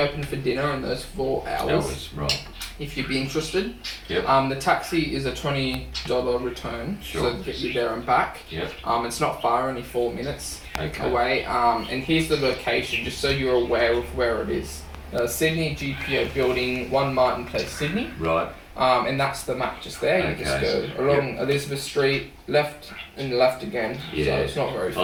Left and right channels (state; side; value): identical; both; correlation 1.00